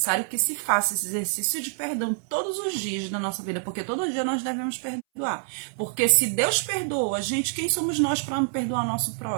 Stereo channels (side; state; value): left; silent; 61 dB below the other